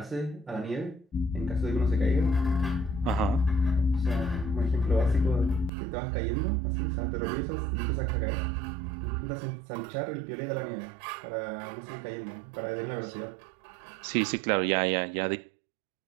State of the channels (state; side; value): drops out; left; at 5.7 s